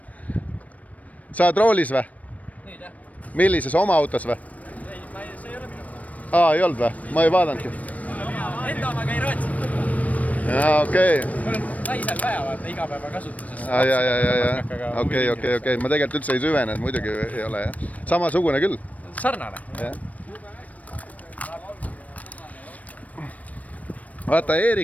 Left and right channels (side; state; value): right; late; 0.069 ms